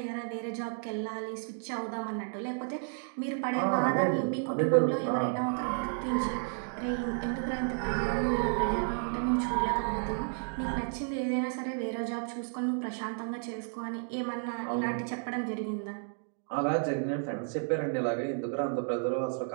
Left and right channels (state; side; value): silent; left; 56 dB below the other